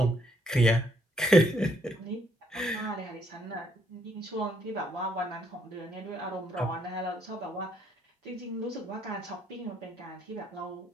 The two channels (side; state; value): both; normal; correlation 0.70